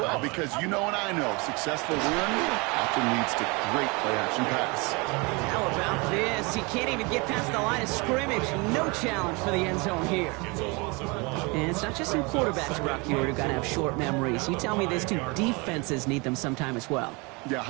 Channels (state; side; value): quieter; left; 27.9 dB